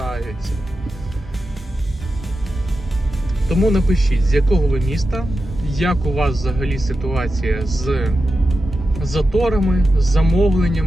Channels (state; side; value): normal; both; correlation 0.91